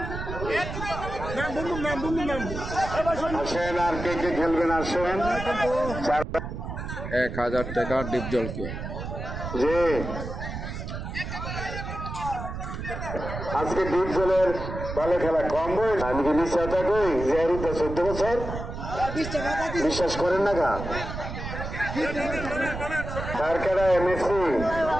আসেন আর কে কে খেলবেন আসেন। 1000 টাকা ডিপজলকে। যে আজকে ডিপজলের ভালো খেলা কম বয়স। আমি কি বিশ্বাসটা কই যে 14 বছর বিশ্বাস করেন না গা তার খেলা এমএসসি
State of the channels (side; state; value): right; noise; rumble, 7 dB below the sound